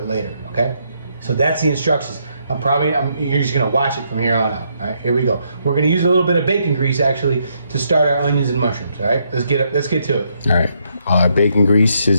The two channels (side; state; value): both; inverted; correlation -0.75